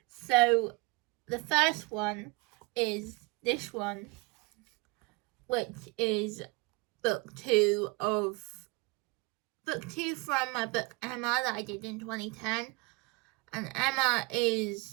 So the first one is this one, which is book 2 from my book Emma that I did in 2010. And Emma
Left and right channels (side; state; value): left; quieter; 25.3 dB